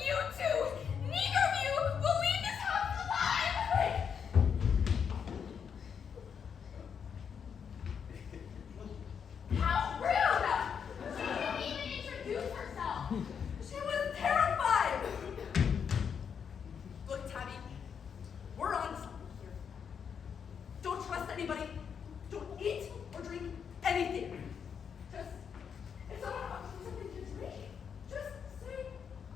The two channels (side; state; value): right; quieter; 7.1 dB